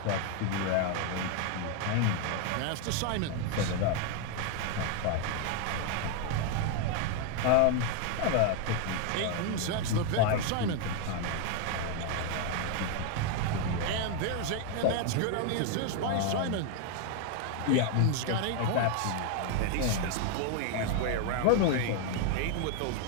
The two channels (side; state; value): both; different; correlation 0.00